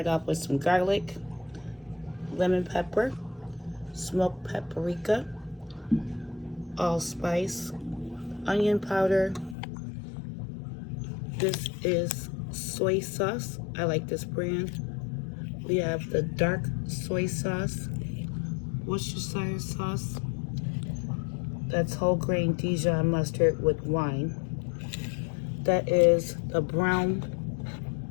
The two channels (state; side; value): drops out; right; at 9.6 s